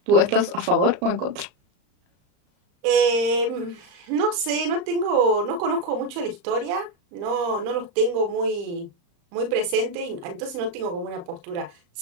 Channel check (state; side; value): late; left; 34 ms